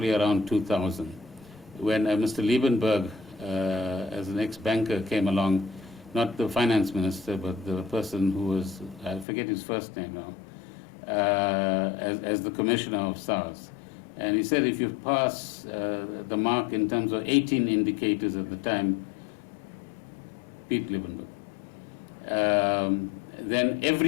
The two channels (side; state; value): right; drops out; at 9.2 s